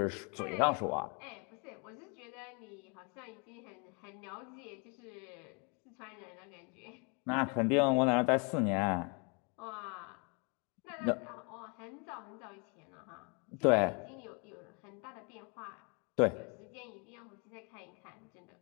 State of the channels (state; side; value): quieter; right; 34.5 dB